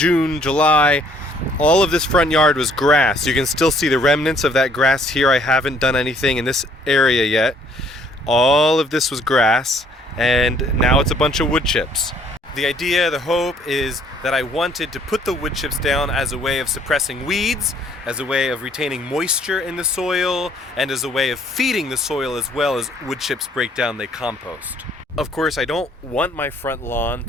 July, all of this front yard was grass. You can still see the remnants of that grass here. I haven't done anything in this area yet. All of this was grass, and now it's a bunch of wood chips. The idea, the hope, is that I wanted to put the wood chips down as a way of suppressing weeds, as a way of retaining moisture in the soil, and as a way of feeding the soil as well as wood chips break down, they compost. Of course, I don't want my front lawn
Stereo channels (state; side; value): normal; both; correlation 0.62